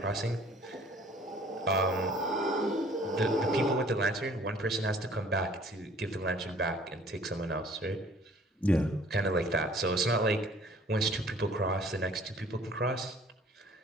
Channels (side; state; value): both; normal; correlation 0.54